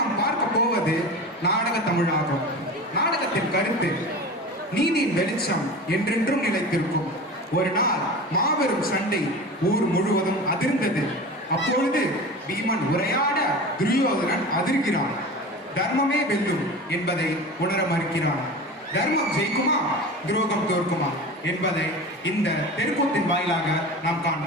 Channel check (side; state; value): both; normal; correlation 0.32